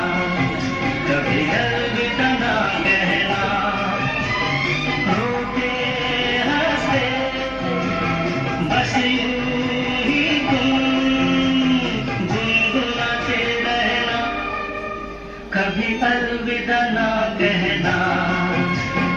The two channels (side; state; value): both; identical; correlation 1.00